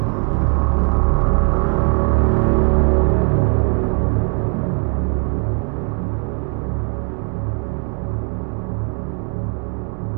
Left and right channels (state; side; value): quieter; left; 37.0 dB